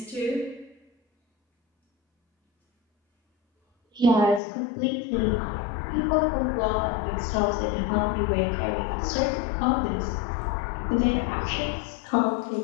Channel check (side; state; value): right; drops out; at 4.4 s